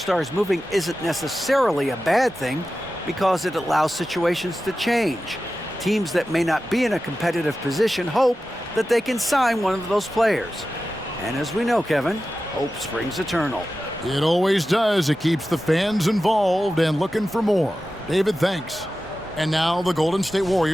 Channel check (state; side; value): normal; both; correlation 0.93